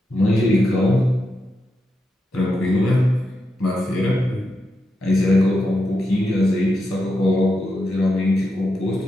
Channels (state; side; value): normal; both; correlation 0.86